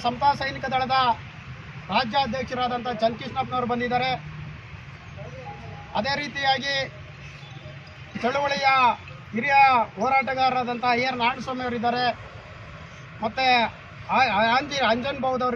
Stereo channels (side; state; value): both; identical; correlation 1.00